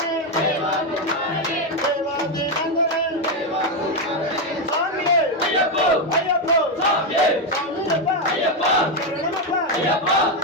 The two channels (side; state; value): both; normal; correlation 0.06